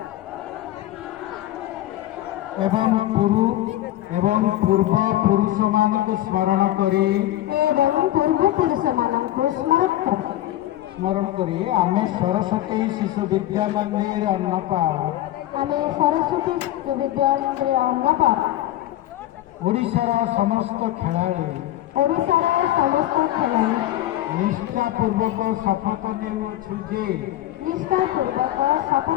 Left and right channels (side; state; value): right; quieter; 14.3 dB